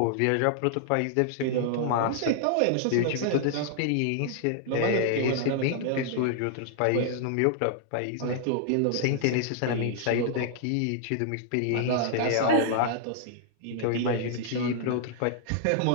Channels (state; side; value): different; both; correlation -0.01